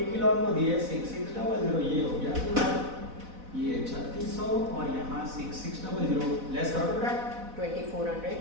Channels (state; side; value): late; left; 4.1 ms